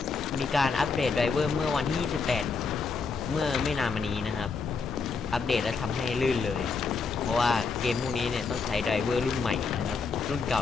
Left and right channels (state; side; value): quieter; right; 4.7 dB